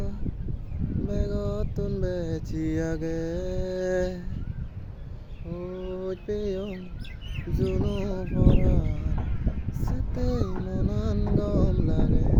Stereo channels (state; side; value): identical; both; correlation 1.00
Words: বেগতন বেছি আগে ওই পেয়ং জুনো ভরা সেতে মনান গম লাগে